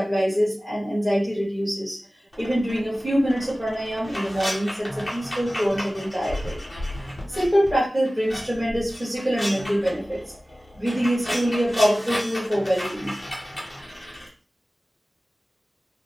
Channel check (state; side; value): normal; both; correlation 0.97